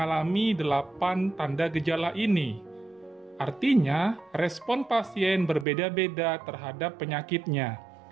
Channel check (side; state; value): left; drops out; at 5.7 s